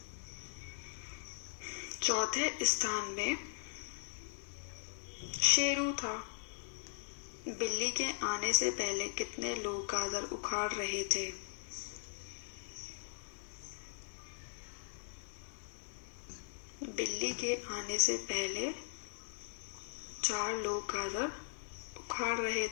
चौथे स्थान में शेरू था। बिल्ली के आने से पहले कितने लोग गाजर उखाड़ रहे थे? बिल्ली के आने से पहले 4 लोग गाजर उखाड़ रहे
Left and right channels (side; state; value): right; silent; 52 dB below the other